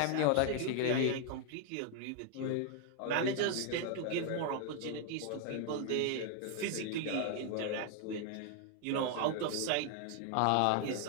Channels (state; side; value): different; both; correlation 0.00